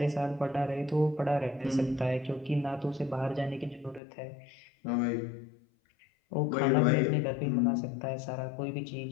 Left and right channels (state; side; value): drops out; right; at 4.0 s